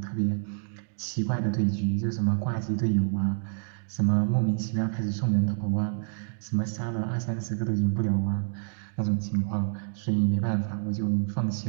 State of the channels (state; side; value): silent; left; digital silence